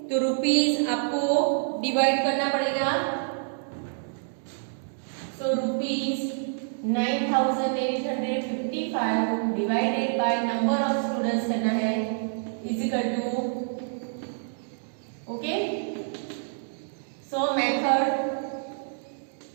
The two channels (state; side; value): silent; left; digital silence